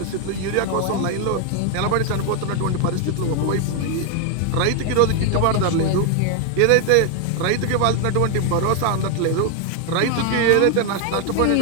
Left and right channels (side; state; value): both; different; correlation 0.01